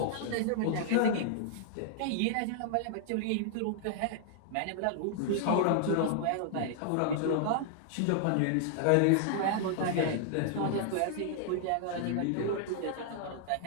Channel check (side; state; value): both; different; correlation -0.01